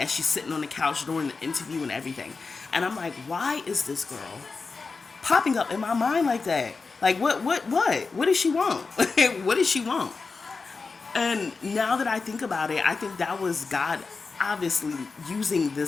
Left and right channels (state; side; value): quieter; right; 4.4 dB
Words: she's sitting on the couch during the interview and everything. And I'm like, why is this girl popping up in my mind like that? Like, what does she want? What does she want? And now that I think about it, I think that was God obviously using